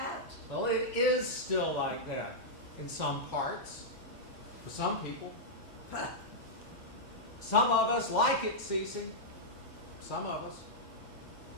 Well, it is still like that in some parts, for some people. Some of us like it, Cece. Some of us.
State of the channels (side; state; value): both; normal; correlation -0.07